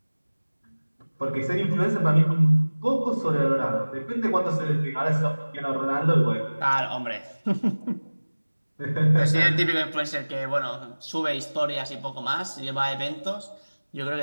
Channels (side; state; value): both; inverted; correlation -1.00